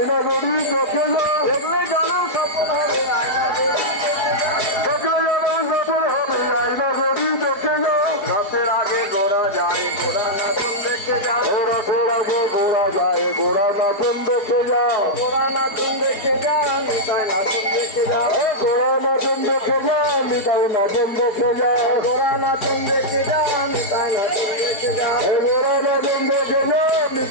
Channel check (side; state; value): right; late; 4.8 ms